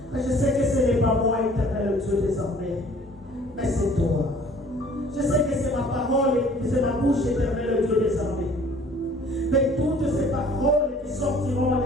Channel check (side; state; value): both; normal; correlation 0.53